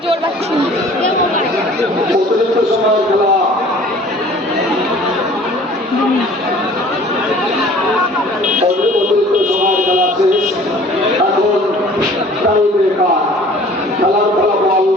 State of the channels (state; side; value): normal; both; correlation 0.50